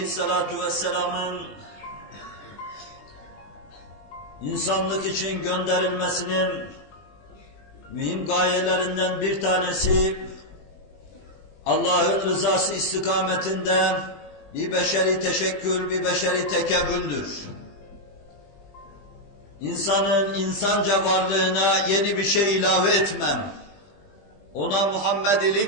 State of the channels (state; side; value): late; right; 20 ms